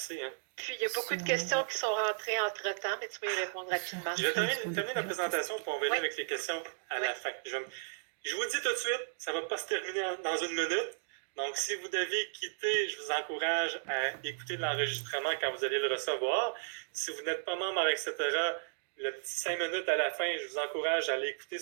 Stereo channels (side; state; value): left; silent; digital silence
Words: Hein? Puis, il y a beaucoup de questions qui sont rentrées entre-temps, mais tu peux y répondre rapidement. Je vais terminer la présentation pour on va aller avec les questions à la fin. Je vous dis tout de suite, ça ne va pas se terminer dans 1 minute. Donc, si vous devez quitter, je vous encourage à écouter l'enregistrement quand vous allez le recevoir. Si vous n'êtes pas membre, etc., le petit 5 minutes à la fin, je vous encourage à aller écouter